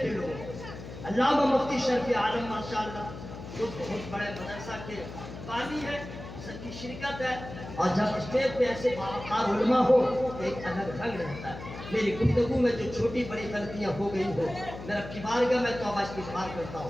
لوگ علامہ مفتی شرف عالم ماشاءاللہ جو بہت بڑے مدرسہ کے بانی ہے سب کی شرکت ہے اور جب اسٹیج پہ ایسے باوقار علماء ہو تو ایک الگ رنگ رہتا ہے میری گفتگو میں جو چھوٹی بڑی غلطیاں ہو گئی ہو میرا کی بارگاہ میں توبہ استغفار کرتا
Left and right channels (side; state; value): left; noise; hum, 12 dB below the sound